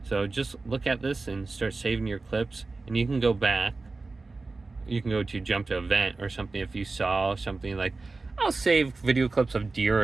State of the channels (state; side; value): quieter; left; 3.6 dB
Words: So just look at this and start saving your clips. And you can go back. You can go to jump to event or something if you saw something like, I'll save video clips of deer